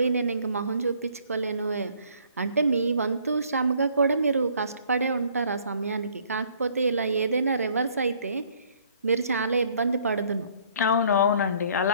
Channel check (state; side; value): inverted; both; correlation -0.61